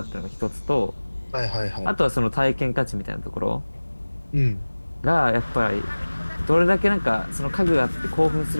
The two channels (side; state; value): both; inverted; correlation -1.00